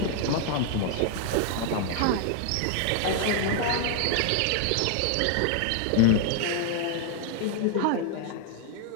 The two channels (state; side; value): different; both; correlation 0.00